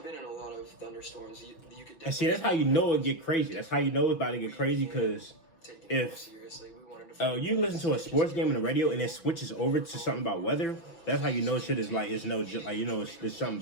been in a lot of thunderstorms. You could. And see, that's how you know it get crazy. That's how you know it's about to get crazy, because if you listen to a sports game on the radio and it switches over to something about weather, that's how you know shit is like, it's no, like, you know, there's something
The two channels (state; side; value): late; right; 6.0 ms